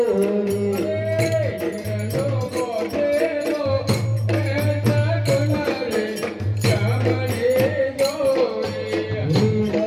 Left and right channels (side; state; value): both; identical; correlation 1.00